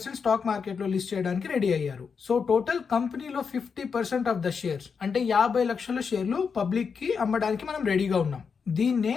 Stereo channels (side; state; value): right; quieter; 5.9 dB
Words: స్టాక్ మార్కెట్ లో లిస్ట్ చేయడానికి రెడీ అయ్యారు. సో టోటల్ కంపెనీలో 50% ఆఫ్ ద షేర్స్ అంటే 50 లక్షల షేర్లు పబ్లిక్ కి అమ్మడానికి మనం రెడీగా ఉన్నాం. దీన్నే